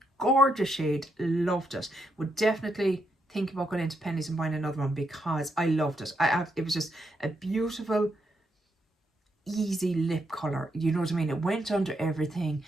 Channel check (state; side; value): normal; both; correlation 0.80